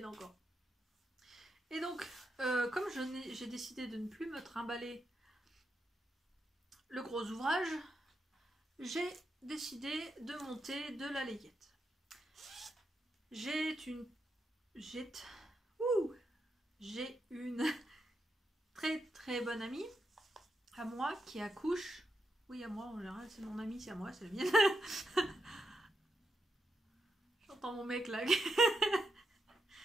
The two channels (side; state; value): both; normal; correlation 0.85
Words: encore. Et donc, comme j'ai décidé de ne plus me trimballer le gros ouvrage, j'ai décidé de monter de la layette. J'ai une très très bonne amie à moi qui accouche. Oui, à moi en général, c'est mon amie, c'est à moi, c'est la mienne. J'entends mon mec là.